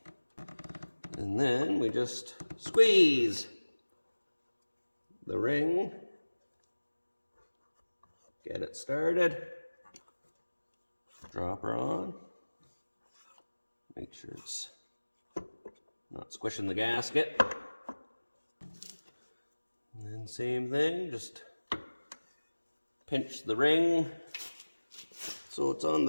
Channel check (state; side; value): inverted; both; correlation -1.00